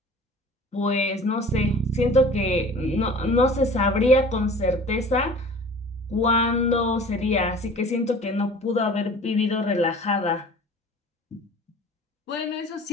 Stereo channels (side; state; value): both; normal; correlation 0.45